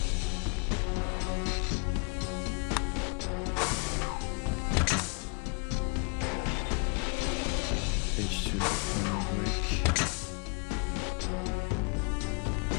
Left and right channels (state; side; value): quieter; right; 35.4 dB